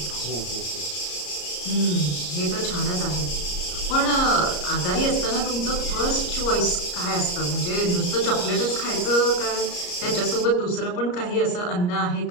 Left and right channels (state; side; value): late; right; 34 ms